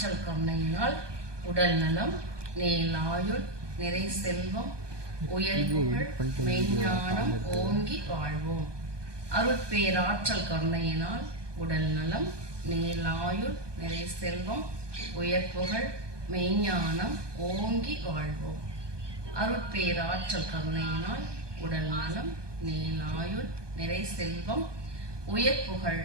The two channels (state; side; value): late; left; 1.2 ms